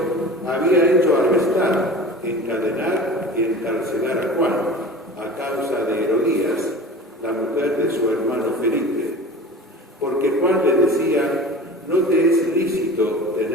había hecho arrestar, encadenar y encarcelar a Juan a causa de Herodías, la mujer de su hermano Felipe, porque Juan le decía: no te es lícito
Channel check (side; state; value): both; normal; correlation 0.38